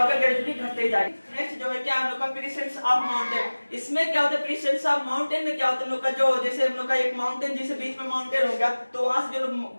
ग्रेजुअली घटते ही जाएगा। नेक्स्ट जो है क्या हम लोग का प्रेजेंस ऑफ माउंटेन, इसमें क्या होता है, प्रेजेंस ऑफ माउंटेन में क्या होता है, हम लोग का जो जैसे हम लोग का एक माउंटेन, जैसे बीच में माउंटेन हो गया, तो वहां से जो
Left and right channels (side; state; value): both; inverted; correlation -1.00